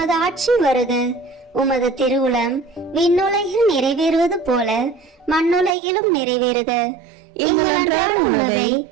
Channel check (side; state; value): left; drops out; at 5.8 s